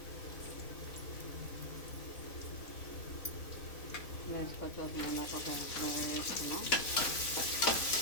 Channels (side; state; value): right; late; 4.0 ms